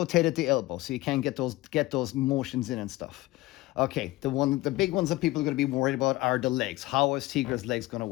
at the elbow, so you can get those motions in and stuff. Okay, the big ones that people are going to be worried about are the legs. How is Teegra's legs going to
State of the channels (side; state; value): right; quieter; 18.7 dB